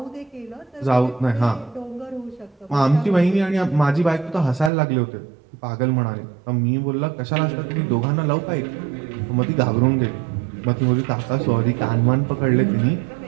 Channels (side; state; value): left; drops out; at 4.7 s